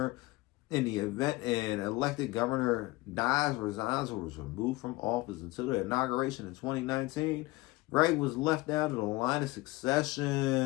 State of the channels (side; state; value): right; quieter; 21.3 dB